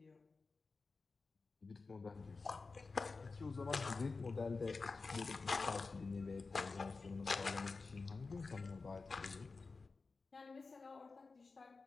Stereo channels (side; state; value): right; quieter; 4.1 dB